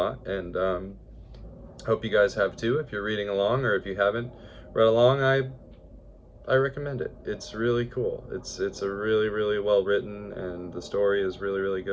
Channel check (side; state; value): both; identical; correlation 1.00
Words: and hope you guys have too. If you're reading along, or if you haven't read along, I recommend it. It's really cool. It's a really well written, and the story is really